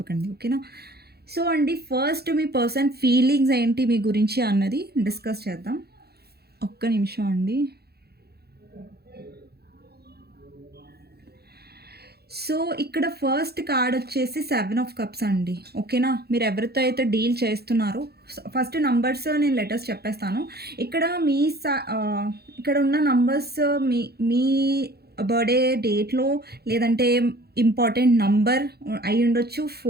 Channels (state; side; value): late; left; 0.46 ms